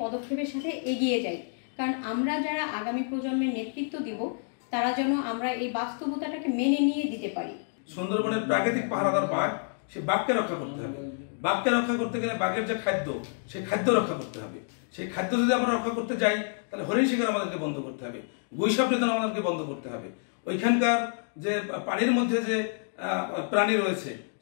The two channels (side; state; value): right; silent; digital silence